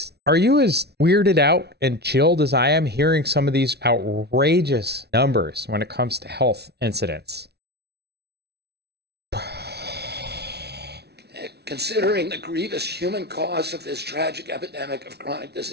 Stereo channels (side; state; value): left; late; 0.48 ms